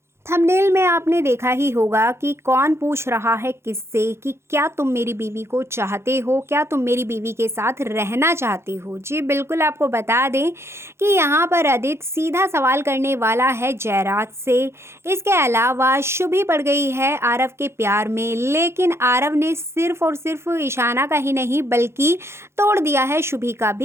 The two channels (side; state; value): left; late; 0.13 ms